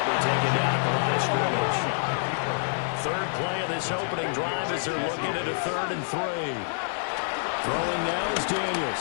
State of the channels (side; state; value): right; silent; digital silence